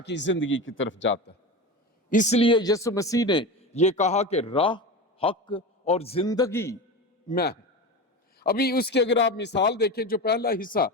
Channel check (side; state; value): both; normal; correlation 0.25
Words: کی زندگی کی طرف جاتا ہے. اس لیے یسوع مسیح نے یہ کہا کہ راہ، حق اور زندگی میں ہے. ابھی اس کی اگر آپ مثال دیکھیں، جو پہلا حصہ